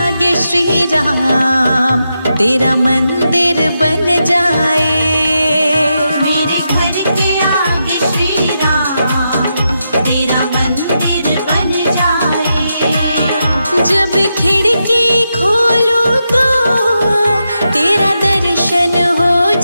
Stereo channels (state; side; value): inverted; both; correlation -0.86